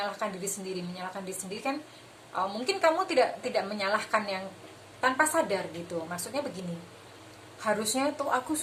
diri sendiri kan. Mungkin kamu tidak menyalahkan yang tanpa sadar gitu, maksudnya begini, harusnya tuh aku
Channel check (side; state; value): both; identical; correlation 1.00